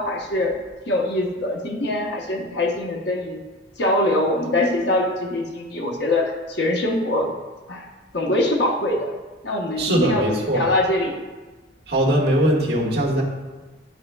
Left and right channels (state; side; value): normal; both; correlation 0.34